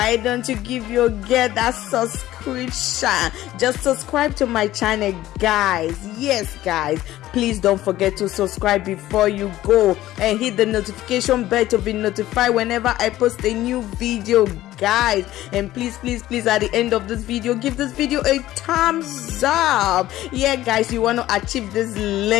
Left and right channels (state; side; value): quieter; right; 14.9 dB